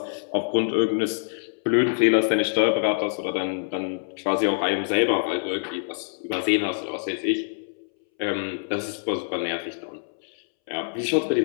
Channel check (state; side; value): silent; right; 61 dB below the other